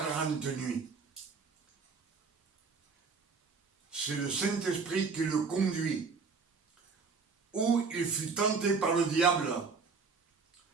nuits. C'est le Saint-Esprit qui le conduit, où il fut tenté par le diable.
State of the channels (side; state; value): left; quieter; 4.9 dB